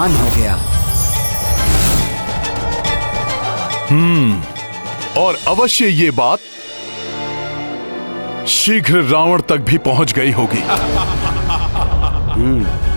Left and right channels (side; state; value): both; inverted; correlation -1.00